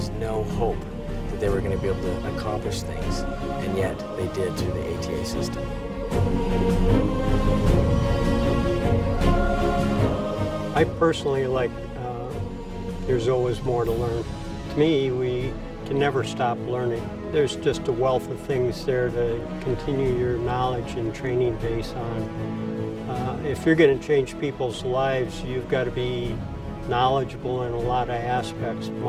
no hope that they were going to be able to accomplish things, and yet they did through the ATA system. I personally like there's always more to learn. To me, we can never stop learning. There's just a wealth of things there to continue your knowledge and training base on. If you're going to change people's lives, you've got to be knowledgeable in a lot of aspects.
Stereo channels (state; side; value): identical; both; correlation 1.00